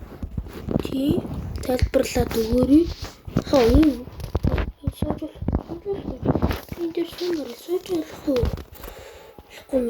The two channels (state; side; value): identical; both; correlation 1.00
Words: Тий, тайлбарлаад өгөөрэй. Энэ сожил. Энэ дээр сожил.